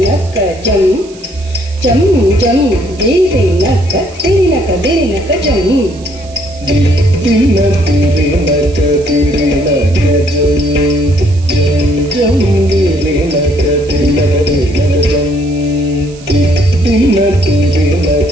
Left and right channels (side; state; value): right; noise; hiss, 22 dB below the sound